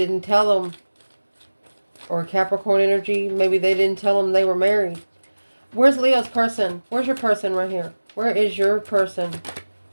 tell them. Or Capricorn energy. Maybe they didn't tell them they were married. Where's Leo's person? Where's your person right here? Where is your person?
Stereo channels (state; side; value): inverted; both; correlation -1.00